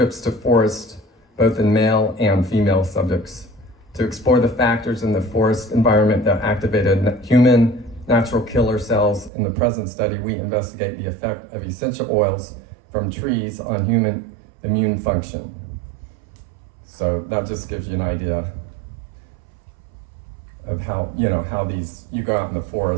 to forest, both in male and female subjects. To explore the factors in the forest environment that activated human natural killer cells in the present study, we investigate the effect of essential oils from trees on human immune function. So that just gives you an idea of how, how you go out in the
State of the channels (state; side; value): drops out; left; at 9.3 s